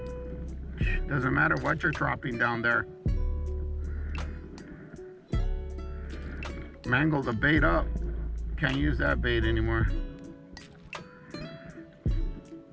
Doesn't matter what you're dropping down there. Mangle the bait up. Can't use that bait anymore.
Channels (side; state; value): both; identical; correlation 1.00